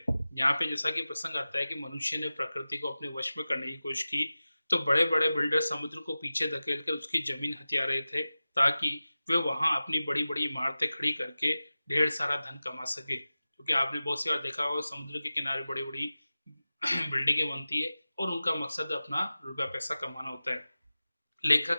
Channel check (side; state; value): both; inverted; correlation -0.96